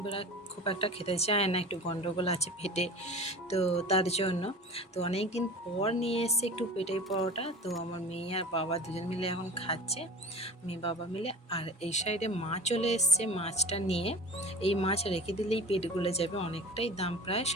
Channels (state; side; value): normal; both; correlation 0.37